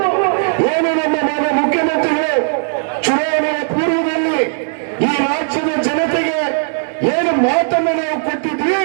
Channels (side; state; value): left; silent; 66 dB below the other